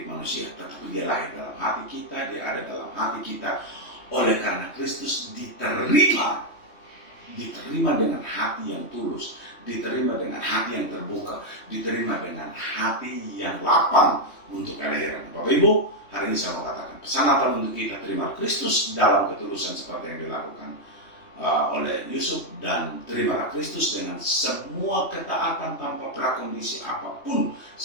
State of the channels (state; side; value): late; right; 3.2 ms